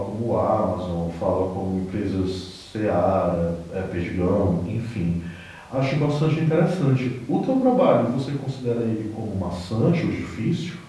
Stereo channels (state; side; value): identical; both; correlation 1.00